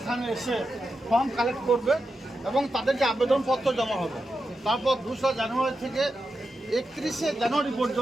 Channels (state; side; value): normal; both; correlation 0.88